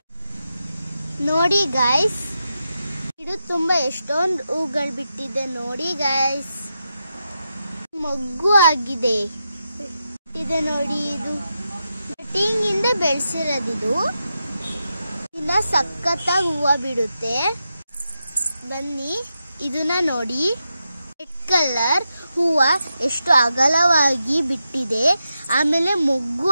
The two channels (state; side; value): inverted; both; correlation -0.87